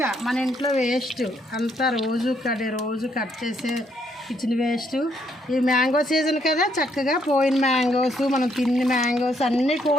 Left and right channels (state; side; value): normal; both; correlation 0.72